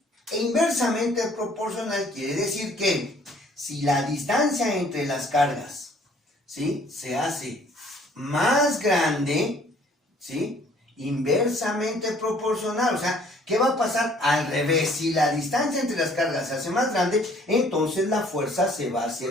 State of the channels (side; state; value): both; normal; correlation 0.58